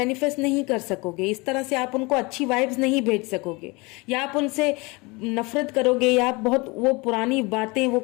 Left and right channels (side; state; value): right; quieter; 25.8 dB